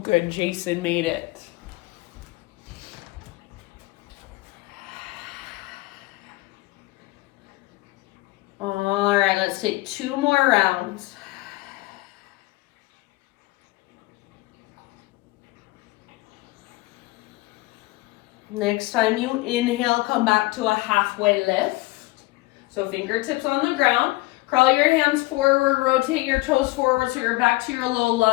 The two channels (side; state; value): right; quieter; 20.9 dB